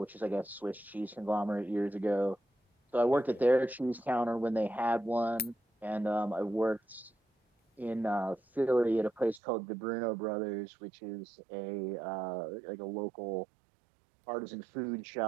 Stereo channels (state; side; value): drops out; left; at 9.4 s